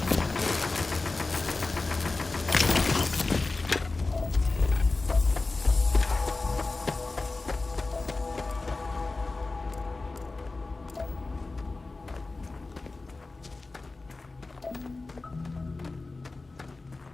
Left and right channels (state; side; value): quieter; right; 3.5 dB